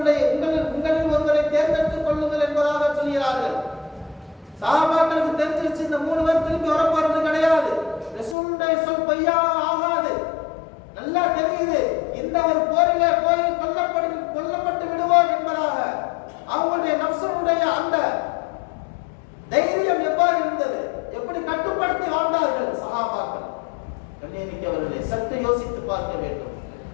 ஒருவரை தேர்ந்தெடுத்துக் கொள்ளுங்கள் என்பதாக சொல்கிறார்கள். சஹாபாக்களுக்கு தெரிஞ்சிருச்சு, இந்த 3 பேர் திரும்பி வரப்போறது கிடையாது, ரசூலுடைய சொல் பொய்யா ஆகாது, நல்லா தெரியுது, இந்த ஒரு போரிலே போய் கொல்லப்பட்டு விடுவோம் என்பதாக அவங்களுடைய நஃப்ஸ் ரசூலுடைய அந்த தைரியம் எவ்வாறு இருந்தது, எப்படி கட்டுப்படுத்தி வாழ்ந்தார்கள் சஹாபாக்கள். கண்ணியமிக்கவர்களே, சற்று யோசித்து பார்க்க வேண்டும்.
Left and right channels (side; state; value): right; drops out; at 8.3 s